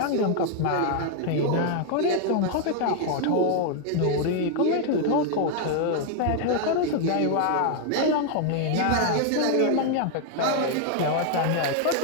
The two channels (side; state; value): both; different; correlation 0.00